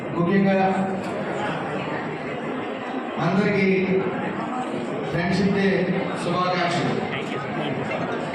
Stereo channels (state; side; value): identical; both; correlation 1.00